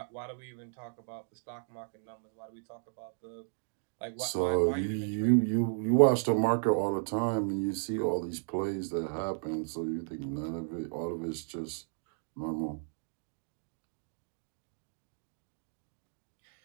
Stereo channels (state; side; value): silent; left; digital silence